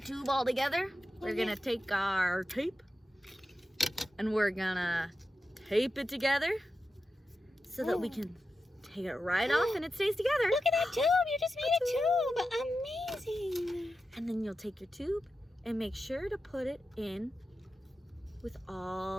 all together, we're gonna take our tape and we're gonna tape it together so that we can take it right off and it stays together. Look at that tube. You just made a tube. Amazing. And then you'll take your tube and make sure to put it in with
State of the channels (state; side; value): normal; both; correlation 0.91